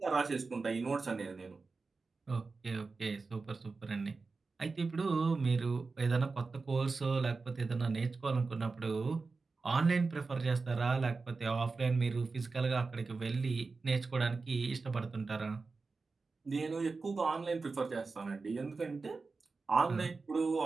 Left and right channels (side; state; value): left; quieter; 4.1 dB